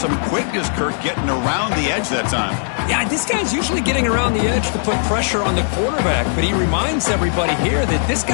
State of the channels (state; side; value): silent; right; 57 dB below the other